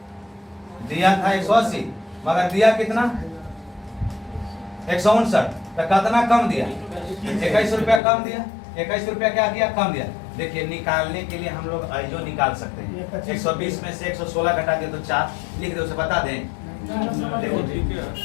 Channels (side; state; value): right; drops out; at 8.0 s